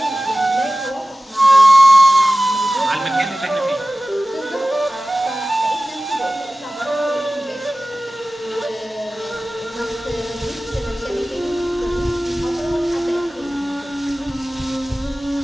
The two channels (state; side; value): normal; both; correlation 0.97